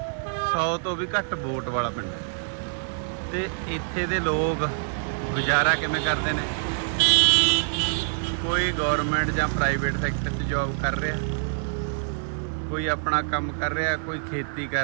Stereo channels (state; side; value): silent; left; 61 dB below the other